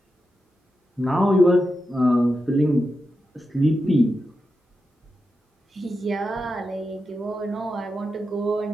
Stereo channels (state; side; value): normal; both; correlation 0.89